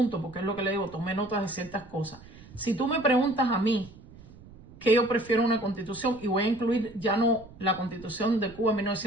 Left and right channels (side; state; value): right; noise; rumble, 20 dB below the sound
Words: porque es lo que le digo, tomé notas de ciertas cosas. Si tú me preguntas a mí que yo prefiero una constitución, y voy a incluir ya no la Constitución de Cuba en